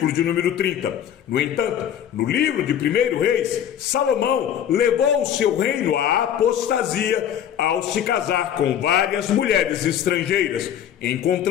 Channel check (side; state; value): right; quieter; 9.8 dB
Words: de número 30. No entanto, no livro de 1 Reis, Salomão levou o seu reino à apostasia ao se casar com várias mulheres estrangeiras. Em